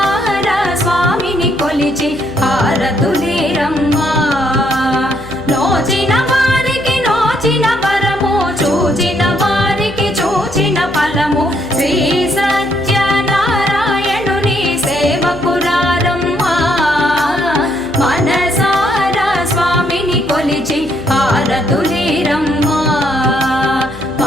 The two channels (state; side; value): noise; left; hum, 17 dB below the sound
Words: స్వామిని కొలిచి హారతులీరమ్మా నోచిన వారికి నోచిన వరము చూచిన వారికి చూచిన ఫలము శ్రీ సత్యనారాయణుని సేవకురారమ్మా మనసారా స్వామిని కొలిచి హారతులీరమ్మా